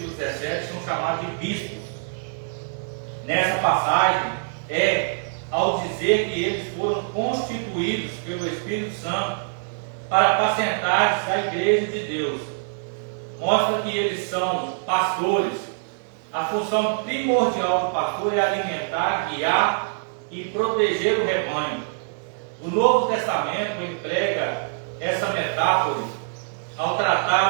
17 são chamados de bispos. Nessa passagem, ao dizer que eles foram constituídos pelo Espírito Santo para apacentar a igreja de Deus, mostra que eles são pastores. A função primordial do pastor é alimentar, guiar e proteger o rebanho. O Novo Testamento emprega essa metáfora ao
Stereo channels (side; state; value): left; silent; digital silence